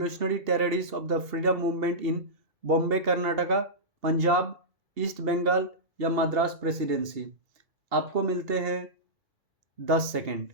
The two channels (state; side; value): late; left; 2.7 ms